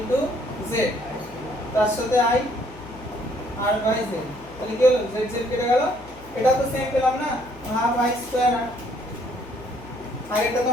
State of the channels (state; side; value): noise; left; hum, 20 dB below the sound